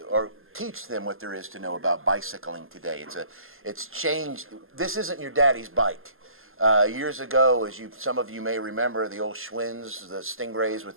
or teach them what there is to know about bicycling today. It's changed. This isn't your daddy's bike. Years ago, as some of you may remember, the old Schwinn's, the Stingrays with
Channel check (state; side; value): late; left; 0.60 ms